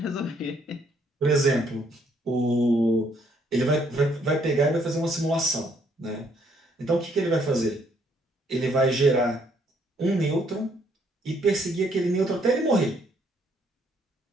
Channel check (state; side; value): normal; both; correlation 0.69